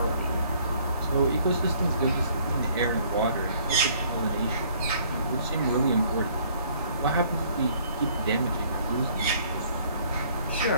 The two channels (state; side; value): inverted; both; correlation -0.60